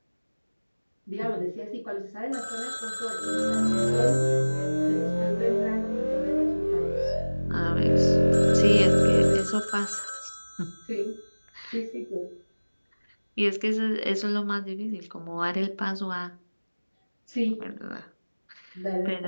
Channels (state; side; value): inverted; both; correlation -1.00